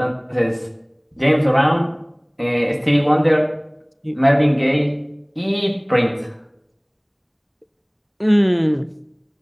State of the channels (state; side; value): identical; both; correlation 1.00